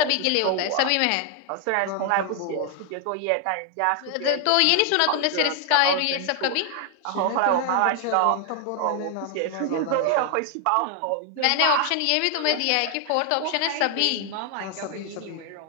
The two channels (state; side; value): different; both; correlation 0.00